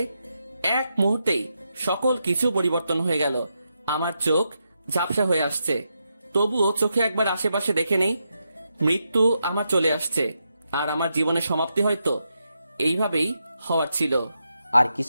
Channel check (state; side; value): inverted; both; correlation -0.84